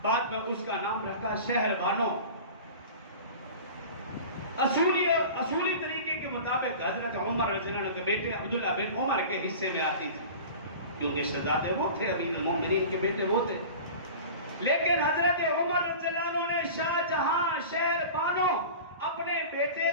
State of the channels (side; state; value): both; inverted; correlation -0.36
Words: بعد میں اس کا نام رکھا شہر بانو۔ اصولی طریقے کے مطابق حضرت عمر رضی اللہ عنہ کے بیٹے عبداللہ بن عمر کے حصے میں آتی تھی، کیونکہ شہزادے وہ تھے، امیر المومنین کے بیٹے وہ تھے۔ لیکن حضرت عمر رضی اللہ عنہ نے شاہ جہاں شہر بانو اپنے بیٹے